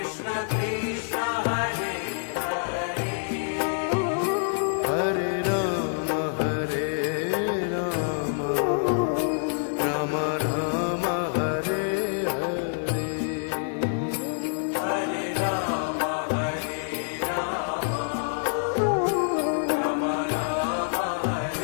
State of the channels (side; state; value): right; silent; digital silence